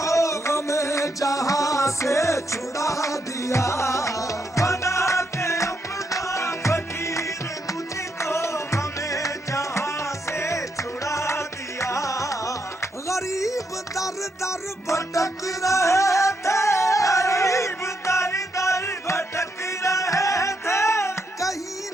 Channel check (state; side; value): normal; both; correlation 0.79